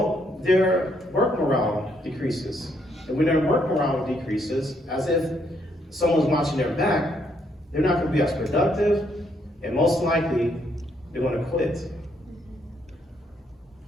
their work morale decreases. And when their work morale decreases, as if someone's watching their back, they're not going to be as productive, and most likely, they're going to quit.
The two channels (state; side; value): normal; both; correlation 0.73